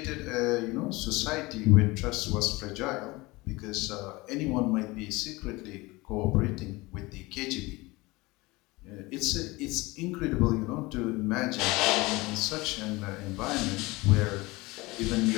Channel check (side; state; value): right; quieter; 22.4 dB